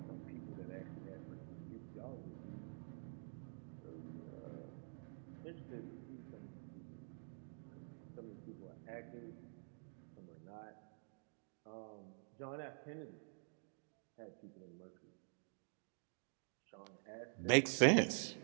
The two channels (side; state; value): left; silent; digital silence